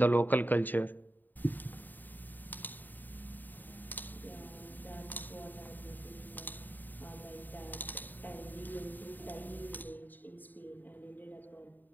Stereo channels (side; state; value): right; late; 0.088 ms